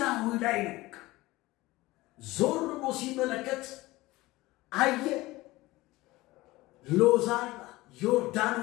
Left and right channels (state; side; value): quieter; right; 19.5 dB